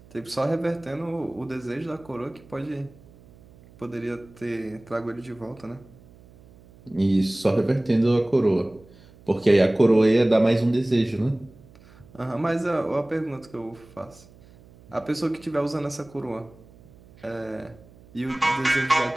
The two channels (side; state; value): right; noise; hum, 24 dB below the sound